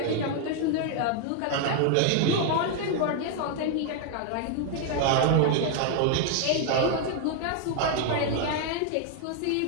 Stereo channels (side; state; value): both; different; correlation 0.00